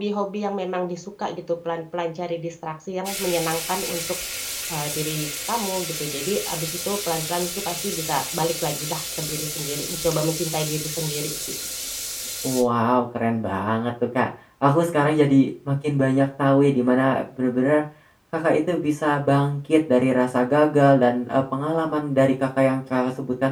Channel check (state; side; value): identical; both; correlation 1.00